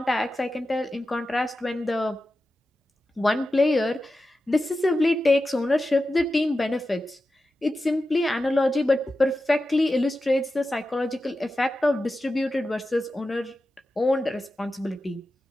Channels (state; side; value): normal; both; correlation 0.92